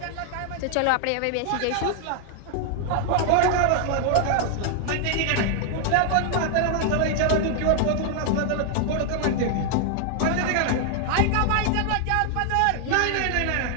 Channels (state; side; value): different; both; correlation 0.00